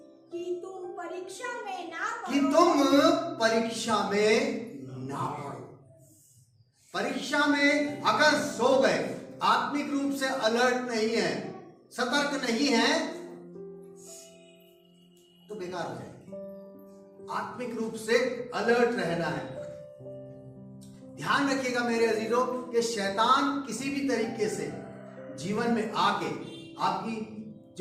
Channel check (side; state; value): both; identical; correlation 1.00